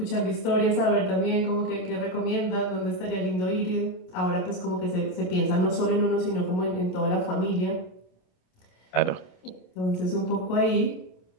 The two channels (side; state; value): right; late; 27 ms